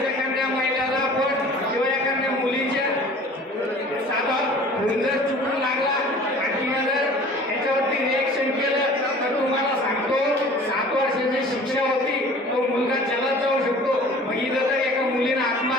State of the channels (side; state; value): both; normal; correlation 0.46